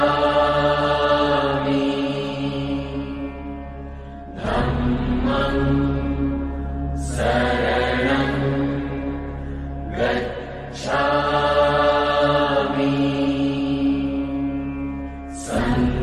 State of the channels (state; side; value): identical; both; correlation 1.00